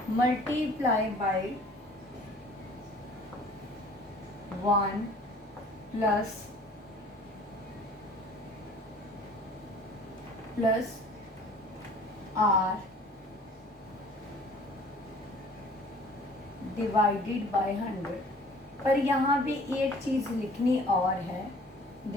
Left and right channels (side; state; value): both; normal; correlation 0.50